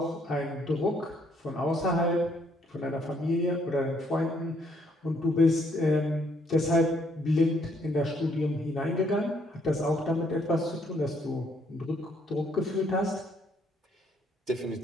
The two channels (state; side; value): normal; both; correlation 0.69